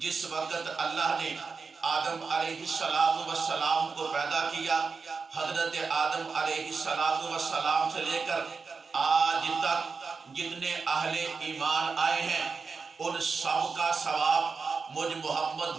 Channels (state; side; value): quieter; left; 4.8 dB